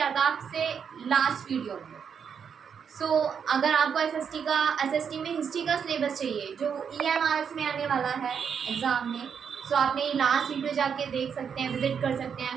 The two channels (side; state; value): left; quieter; 7.1 dB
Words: था आपसे लास्ट वीडियो में। सो अगर आपको एसएसटी में हिस्ट्री का सिलेबस चाहिए जो ईएमआरएस में आने वाला है एग्ज़ाम में, सो आपने लास्ट वीडियो जाके देख सकते हैं, विजिट कर सकते